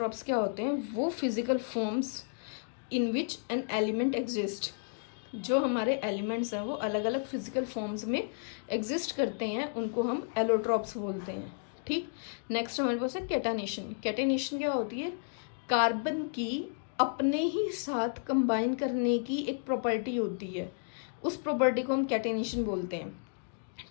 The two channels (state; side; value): silent; right; digital silence